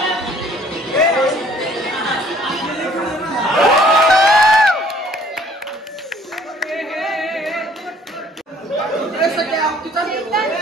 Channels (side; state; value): both; normal; correlation 0.58